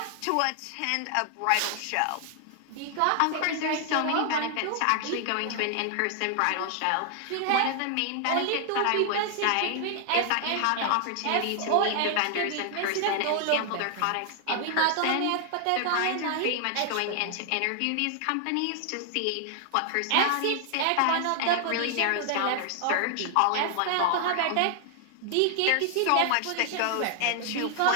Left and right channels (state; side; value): different; both; correlation 0.00